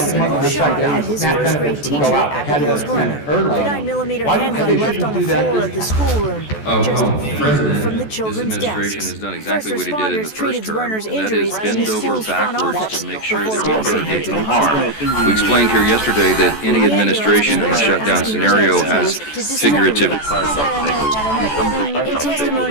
single shot at his first-grade teacher, Abigail's Werner. The 9mm handgun left on the floor of the schoolroom, just feet from the children's desks. Has done exactly First what he did in the responders first treated term, Werner's and that injuries is in bend the over school's front backwards office to make sure before that we racing don't him get to no the harm. hospital. We explained here yesterday that any administration in a shutdown scenario has figurative. In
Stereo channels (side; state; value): right; late; 14 ms